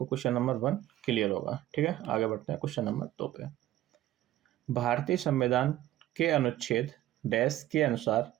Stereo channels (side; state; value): left; quieter; 14.1 dB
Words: क्वेश्चन नंबर 1 क्लियर होगा। ठीक है, आगे बढ़ते हैं क्वेश्चन नंबर 2 पे। भारतीय संविधान के अनुच्छेद डैश के अनुसार